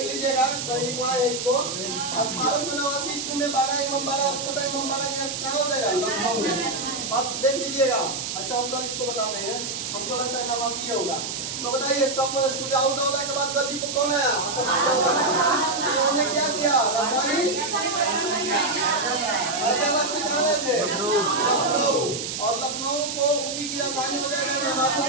लीजिएगा, कहीं लिखवा है इसको। 1889 ईस्वी में बड़ा इमामबाड़ा और छोटा इमामबाड़ा कहाँ हो जाएगा? लखनऊ में। बस देख लीजिएगा। अच्छा हम कल इसको बता देंगे, हमको लगता है नवासी होगा। तो बताइए सब सुजाउद्दौला के बाद गद्दी पर कौन आया? उन्होंने क्या किया? राजधानी हैदराबाद से कहाँ गए थे? लखनऊ। और लखनऊ को ऊपी की राजधानी हो जाएगा, नवाबों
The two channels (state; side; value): noise; right; hiss, 5 dB below the sound